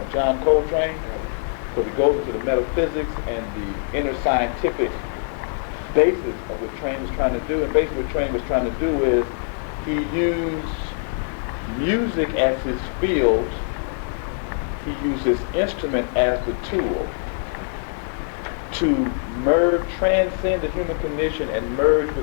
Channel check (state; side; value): silent; right; 63 dB below the other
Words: John Coltrane, because it goes into the metaphysics and the inner scientific basis of what Train was trying to do. And basically what Train was trying to do is he used music as his field, he used his instrument as the tool to transcend the human condition and merge